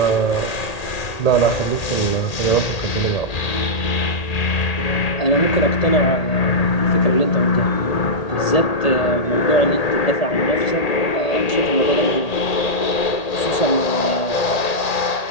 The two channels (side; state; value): right; late; 1.8 ms